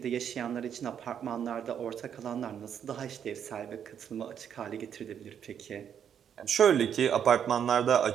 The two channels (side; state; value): left; quieter; 8.5 dB